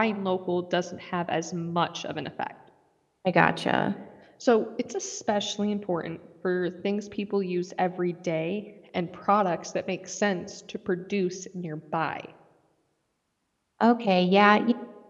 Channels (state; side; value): identical; both; correlation 1.00